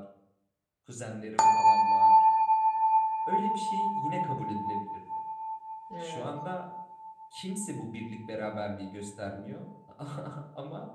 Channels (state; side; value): identical; both; correlation 1.00